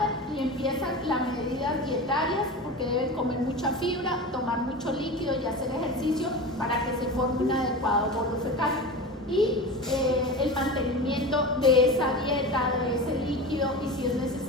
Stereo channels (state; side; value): normal; both; correlation 0.29